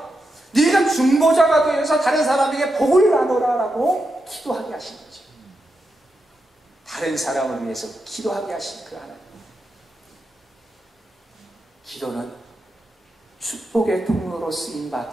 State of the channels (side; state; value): both; normal; correlation 0.87